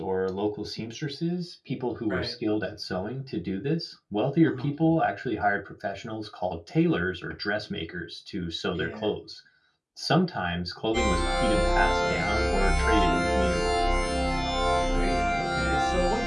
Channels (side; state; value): both; identical; correlation 1.00